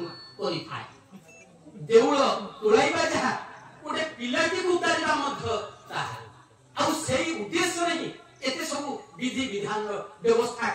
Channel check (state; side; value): identical; both; correlation 1.00